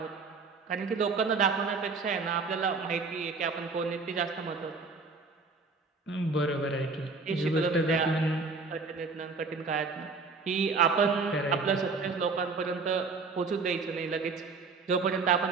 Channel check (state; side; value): quieter; left; 4.4 dB